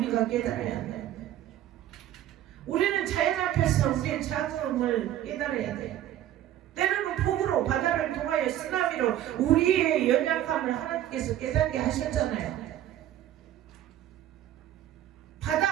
깨달아야 돼. 우리는 자연 앞에서 우리의 작음을 깨달아야 돼. 때로는 폭우로 바다를 통하여 쓰나미로 우리의 연약함을 하나님께서 깨닫게 하셨잖아요.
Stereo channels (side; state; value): left; quieter; 12.3 dB